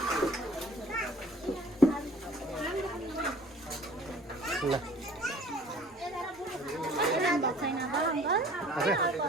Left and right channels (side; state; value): both; normal; correlation 0.51